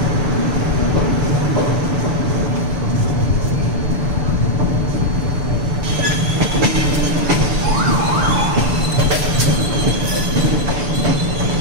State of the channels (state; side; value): late; left; 6.9 ms